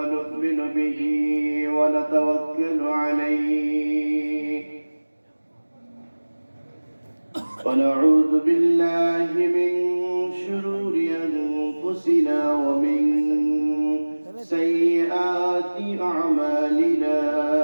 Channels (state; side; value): inverted; both; correlation -1.00